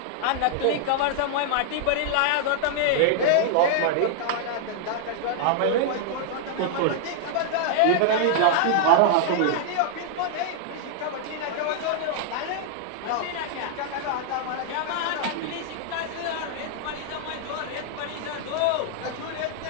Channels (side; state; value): both; different; correlation -0.01